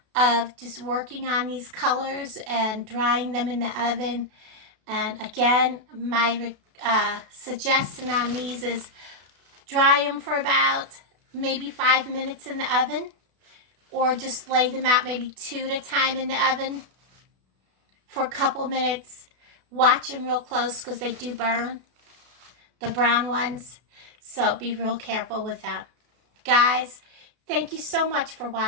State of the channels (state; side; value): late; left; 32 ms